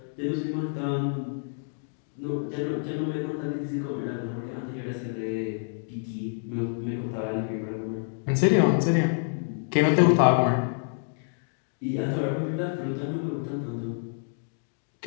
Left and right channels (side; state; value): right; silent; digital silence